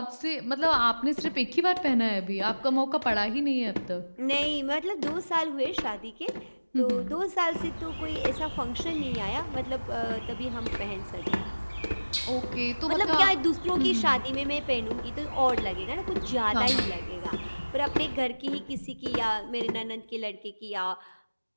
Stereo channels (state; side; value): inverted; both; correlation -1.00